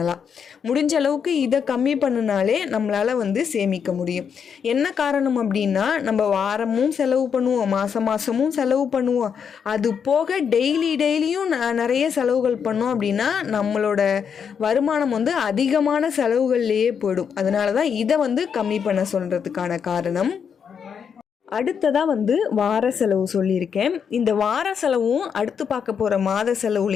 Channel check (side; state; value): right; quieter; 7.1 dB